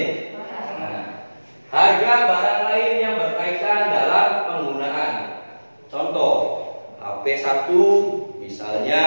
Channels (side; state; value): both; inverted; correlation -1.00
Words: Nah, harga barang lain yang berkaitan dalam penggunaan. Contoh, HP 1 misalnya